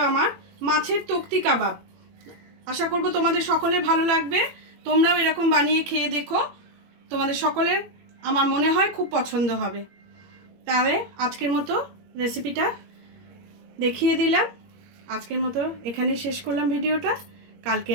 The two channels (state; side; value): late; left; 21 ms